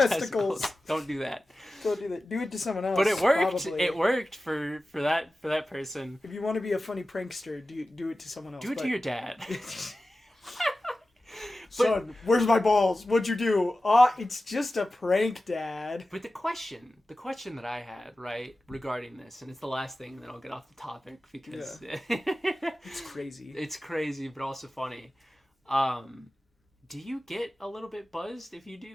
Don't do that. Don't do that. Do it to someone else. But it worked. Probably. It worked for that person. If you want to be a funny prankster, do it to someone else. Do it to your dad. Son, where's my balls? What'd you do? It's just a prank, Dad. But the question that I had, right, regarding this, and it's the last thing, and then I'll get off the topic because it's crazy. It's crazy, but also funny. Do you get a little bit buzzed if you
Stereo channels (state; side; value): normal; both; correlation 0.95